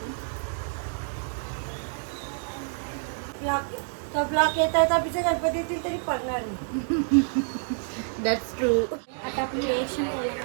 ब्लॉक येत आहे तर पिछे गणपती येतील तरी पडणार नाही. That's true. आता आपली रिएक्शन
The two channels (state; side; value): silent; left; digital silence